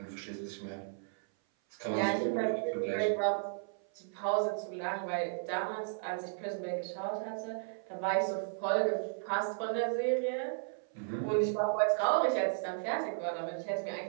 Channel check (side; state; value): left; silent; 55 dB below the other